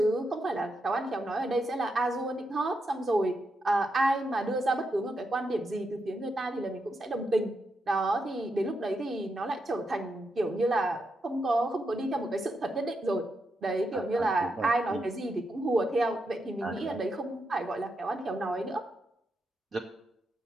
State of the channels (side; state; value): both; normal; correlation 0.83